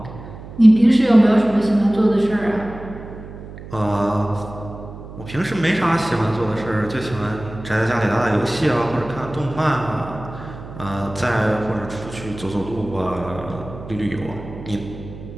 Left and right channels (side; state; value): right; noise; hum, 14 dB below the sound